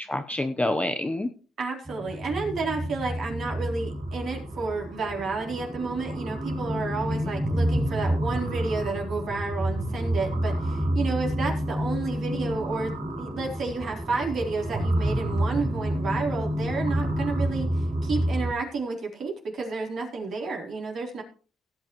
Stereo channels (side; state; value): both; normal; correlation 0.87